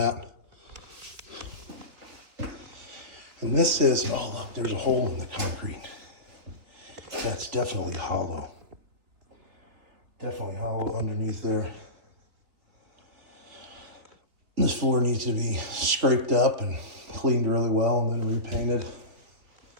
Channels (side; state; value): left; late; 3.4 ms